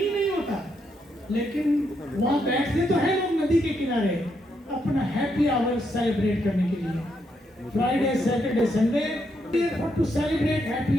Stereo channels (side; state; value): both; normal; correlation 0.78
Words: नहीं होता। लेकिन वहाँ बैठते तो है लोग नदी के किनारे अपना हैप्पी आवर सेलिब्रेट करने के लिए। Friday Saturday Sunday to celebrate happy